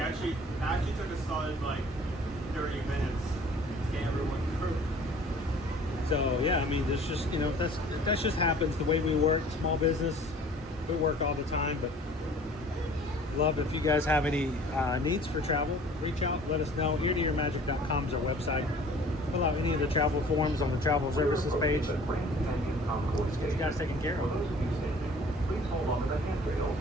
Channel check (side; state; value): both; normal; correlation 0.49